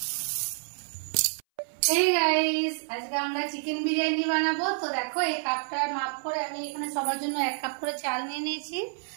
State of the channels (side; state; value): left; silent; 59 dB below the other